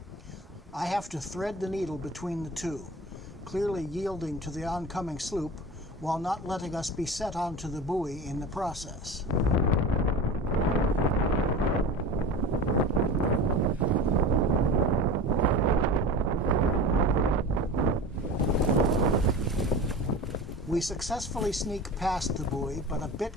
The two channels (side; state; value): both; normal; correlation 0.33